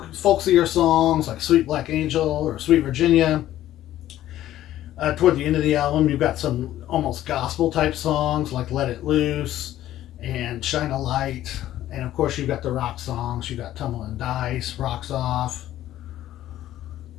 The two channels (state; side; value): quieter; right; 13.3 dB